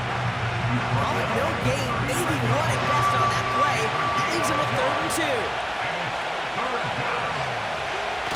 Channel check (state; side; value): identical; both; correlation 1.00